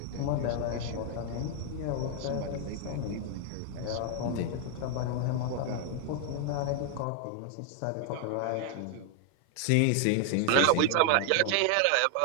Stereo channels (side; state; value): both; different; correlation 0.00